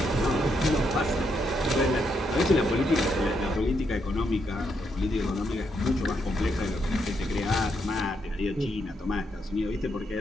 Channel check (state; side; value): normal; both; correlation 0.78